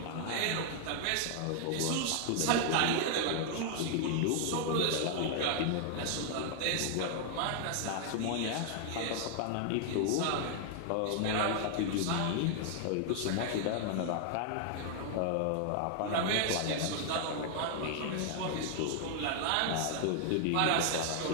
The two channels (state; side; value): different; both; correlation 0.00